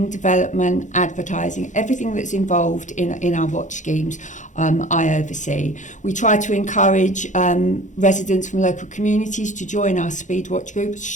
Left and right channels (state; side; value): late; right; 0.36 ms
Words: development, advertising, everything that's involved in our watch schemes, I oversee. We try to encourage residents from local communities to join our speed watch group,